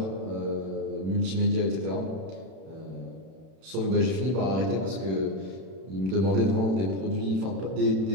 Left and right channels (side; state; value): left; late; 32 ms